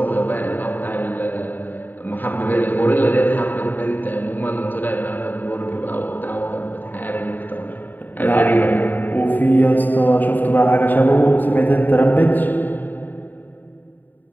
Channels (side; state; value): right; late; 0.088 ms